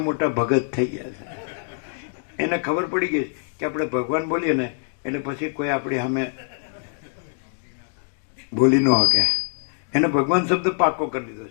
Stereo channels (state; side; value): silent; right; 63 dB below the other